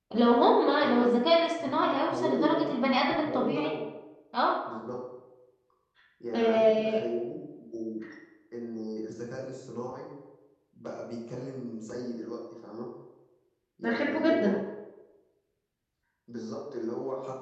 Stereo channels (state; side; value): identical; both; correlation 1.00